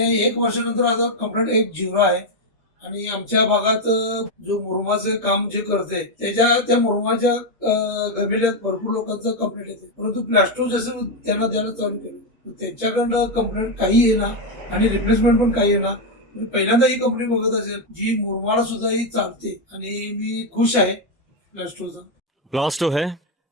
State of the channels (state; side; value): normal; both; correlation 0.04